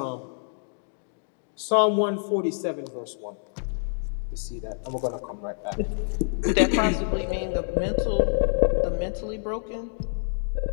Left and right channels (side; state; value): right; silent; digital silence